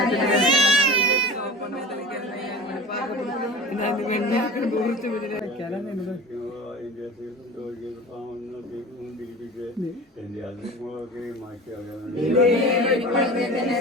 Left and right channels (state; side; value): normal; both; correlation 0.35